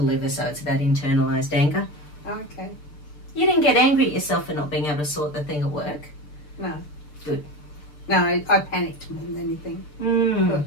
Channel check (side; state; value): right; late; 6.8 ms